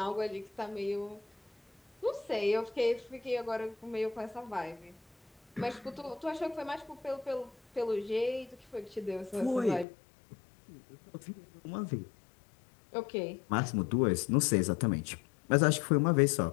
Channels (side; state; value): right; drops out; at 9.9 s